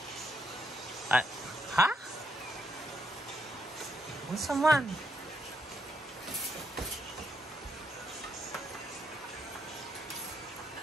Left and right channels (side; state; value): both; normal; correlation 0.77